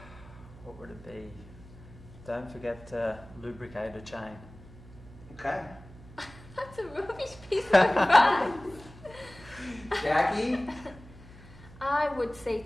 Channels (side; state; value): right; noise; hum, 19 dB below the sound